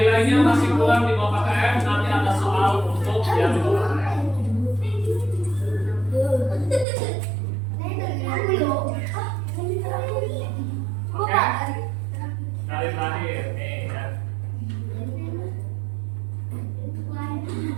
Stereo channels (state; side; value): drops out; left; at 6.9 s